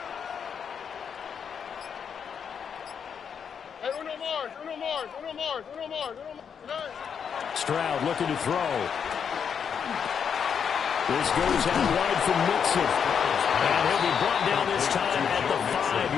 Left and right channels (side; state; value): right; quieter; 7.2 dB